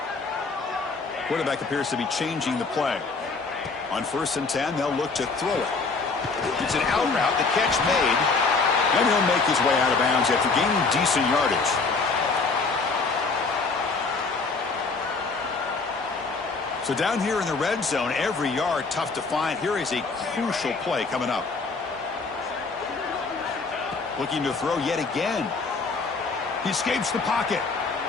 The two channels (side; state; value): right; quieter; 4.2 dB